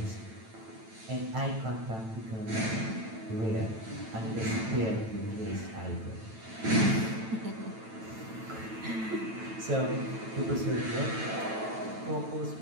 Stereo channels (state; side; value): late; left; 9.1 ms